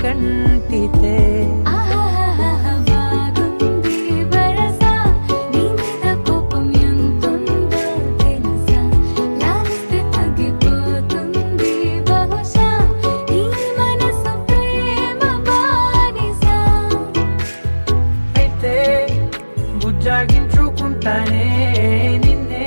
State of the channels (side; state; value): both; inverted; correlation -1.00